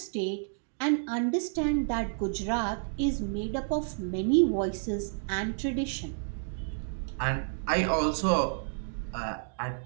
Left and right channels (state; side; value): silent; left; digital silence